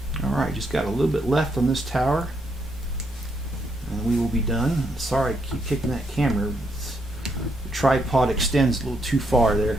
Alright, just got a little bit left on this tower and we will be done. Sorry, I keep kicking that camera. The tripod extends a little too far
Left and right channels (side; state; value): both; normal; correlation 0.76